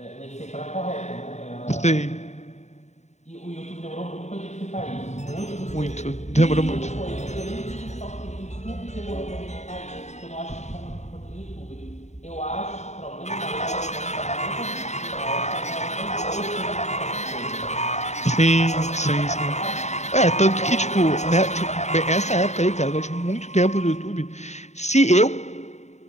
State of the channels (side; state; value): right; late; 0.33 ms